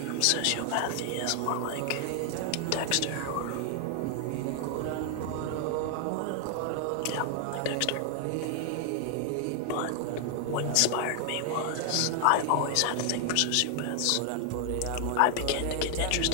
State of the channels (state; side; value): different; both; correlation 0.00